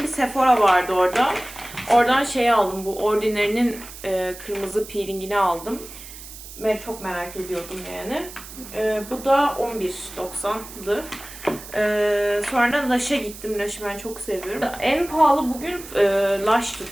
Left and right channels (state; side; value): noise; right; hiss, 15 dB below the sound